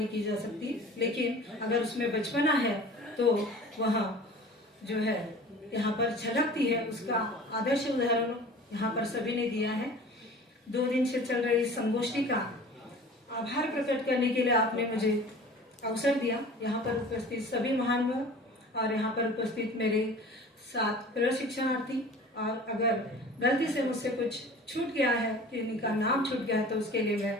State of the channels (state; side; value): normal; both; correlation 0.42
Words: की जा सकती, लेकिन अगर उसमें बचपना है तो वह जो है यहाँ पर झलकती है, उसका आदर्श उदाहरण यहाँ पर सभी ने दिया है। 2 दिन से चल रही इस संगोष्ठी का आभार प्रकट करने के लिए आपने मुझे अवसर दिया। यहाँ पर उपस्थित सभी महानुभाव और यहाँ पर उपस्थित मेरे साथ प्रशिक्षणार्थी, और अगर गलती से मुझसे कुछ छूट गया है, किसी का नाम छूट गया है, तो उसके लिए मैं